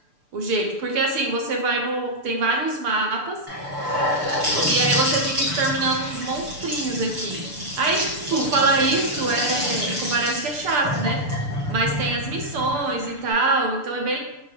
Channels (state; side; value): late; left; 6.8 ms